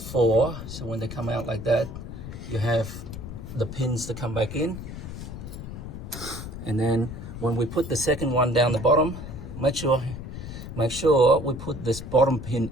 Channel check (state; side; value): noise; left; rumble, 9 dB below the sound